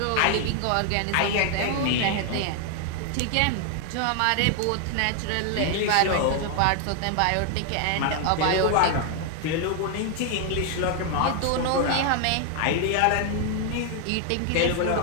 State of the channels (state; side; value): different; both; correlation 0.00